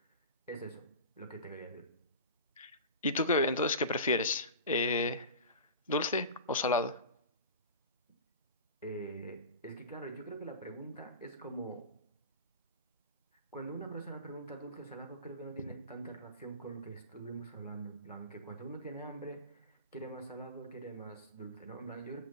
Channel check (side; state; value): both; inverted; correlation -0.31